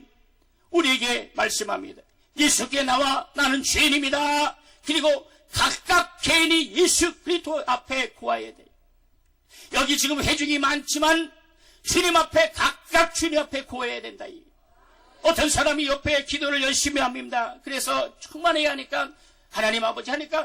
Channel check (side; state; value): both; identical; correlation 1.00